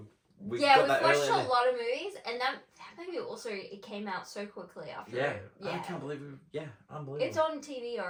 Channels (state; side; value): identical; both; correlation 1.00